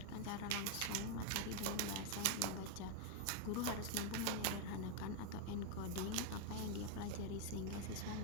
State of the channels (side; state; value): both; different; correlation 0.01